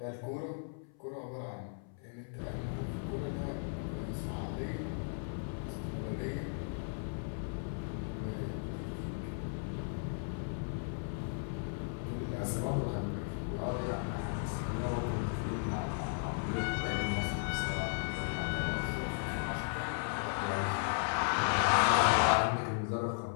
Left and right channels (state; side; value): silent; right; 54 dB below the other